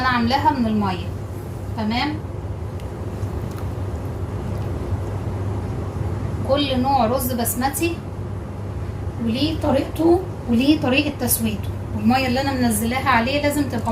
عاملاها من المية تمام. كل نوع رز بسمتي وليه طريقته وليه طريقة تسويته، والمية اللي انا منزلاها عليه لازم تبقى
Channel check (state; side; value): identical; both; correlation 1.00